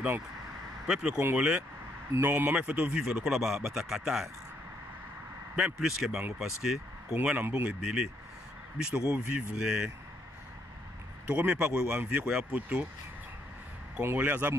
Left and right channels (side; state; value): both; normal; correlation 0.72